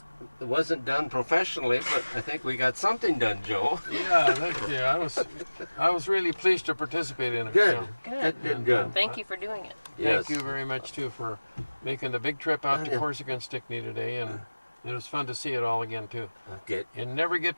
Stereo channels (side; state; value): both; inverted; correlation -1.00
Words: it wasn't done professionally, but I think we got something done, Joe. Yeah, thank you. I was really pleased to participate in it. Good. Yeah. Good. Thank you for doing it. Yes. Thank you very much too for making the big trip out to Corsica and Stickney today, and it was fun to see it all again too. Okay. You never get